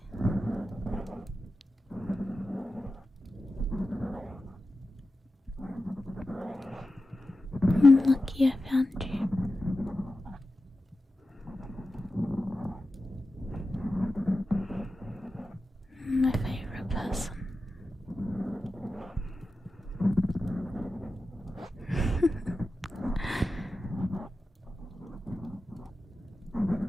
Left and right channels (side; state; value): both; normal; correlation 0.92